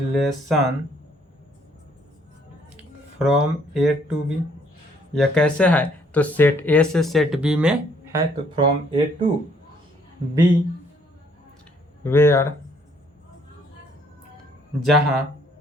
from A to B. यह कैसे है? तो सेट ए से सेट बी में है, तो from A to B, where जहाँ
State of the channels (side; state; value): both; normal; correlation 0.65